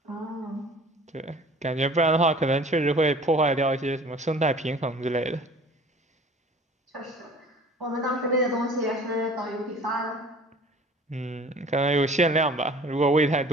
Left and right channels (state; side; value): normal; both; correlation 0.47